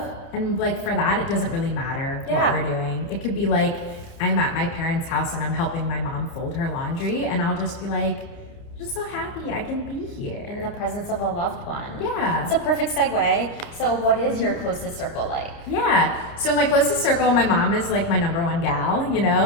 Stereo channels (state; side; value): late; right; 30 ms